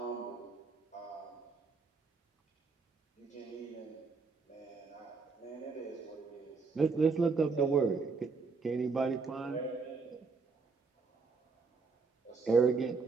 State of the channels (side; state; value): left; quieter; 4.5 dB